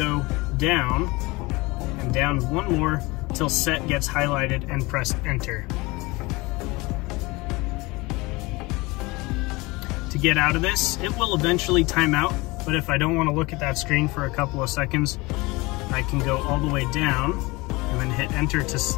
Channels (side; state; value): right; quieter; 23.4 dB